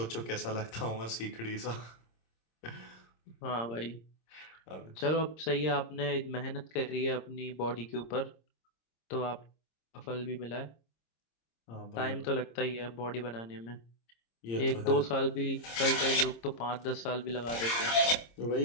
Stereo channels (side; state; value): right; late; 26 ms